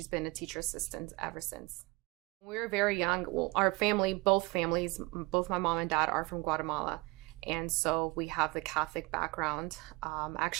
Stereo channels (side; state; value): left; quieter; 24.4 dB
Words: been a teacher assistant ever since. When we were very young, well, our family, both families, both my mom and dad are from Guatemala, and so we have the Catholic background. I